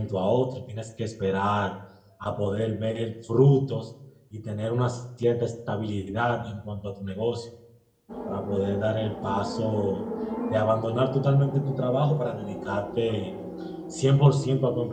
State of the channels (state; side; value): identical; both; correlation 1.00